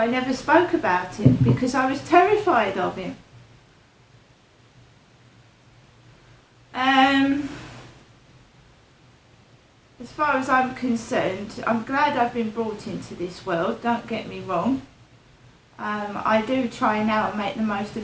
never spoke about him, because I was terrified of him. As far as I'm concerned, I'm glad I've been brought into this world, don't get me wrong. I do try now and make the most of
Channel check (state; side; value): identical; both; correlation 1.00